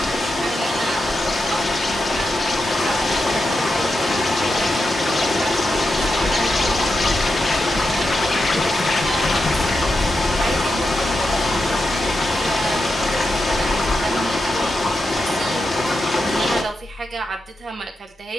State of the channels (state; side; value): normal; both; correlation 0.87